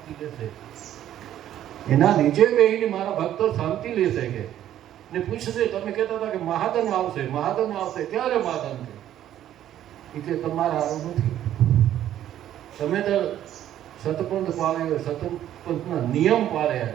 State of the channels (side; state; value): left; quieter; 11.7 dB